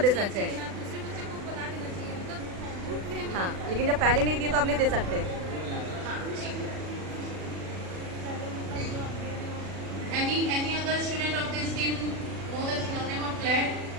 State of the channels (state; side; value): late; left; 40 ms